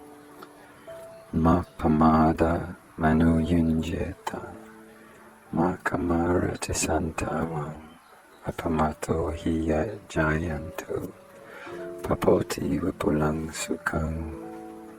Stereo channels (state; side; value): identical; both; correlation 1.00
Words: Ma pamada manu yunjeta, ma kamara tisantavam, apamato hiya jayantu, papoti vipulang sukhang.